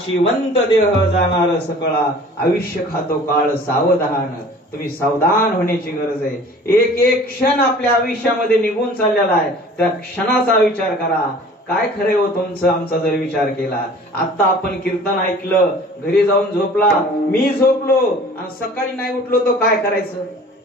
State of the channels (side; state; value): both; normal; correlation 0.47